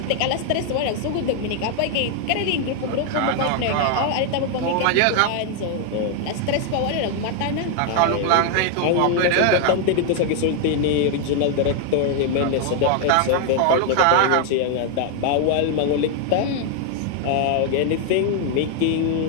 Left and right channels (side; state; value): both; different; correlation 0.00